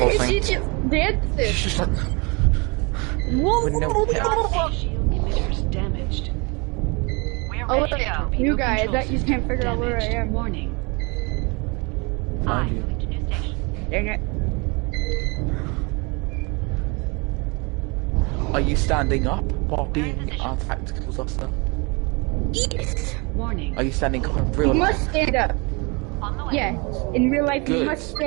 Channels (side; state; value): left; quieter; 29.5 dB